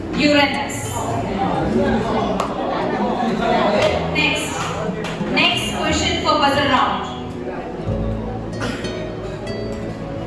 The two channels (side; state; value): both; identical; correlation 1.00